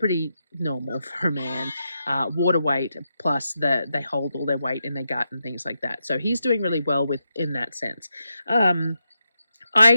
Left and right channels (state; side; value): inverted; both; correlation -0.85